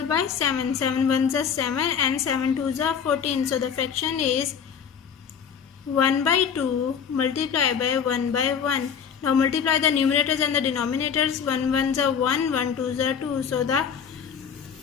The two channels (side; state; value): right; quieter; 7.3 dB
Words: by 7. 7 1s are 7 and 7 2s are 14. So the fraction is 1 by 2 multiplied by 1 by 1. Now multiply the numerators and the denominators. 1 1s are 1, 1 2s are 2. So